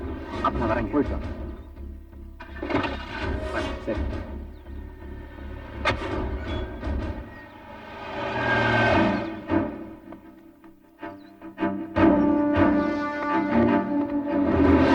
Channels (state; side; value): identical; both; correlation 1.00